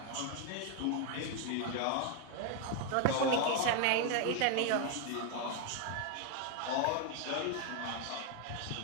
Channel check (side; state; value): both; different; correlation 0.01